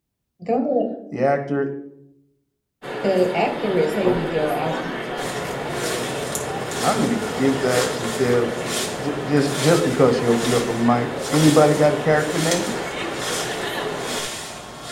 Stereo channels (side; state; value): both; identical; correlation 1.00